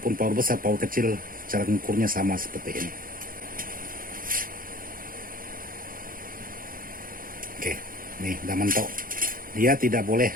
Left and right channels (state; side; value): late; left; 0.41 ms